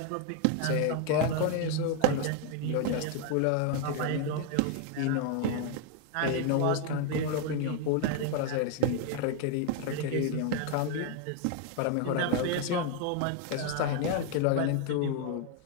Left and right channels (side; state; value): both; different; correlation 0.01